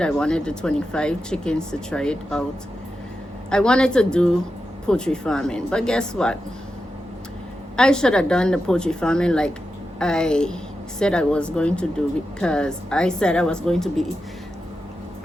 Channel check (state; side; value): normal; both; correlation 0.89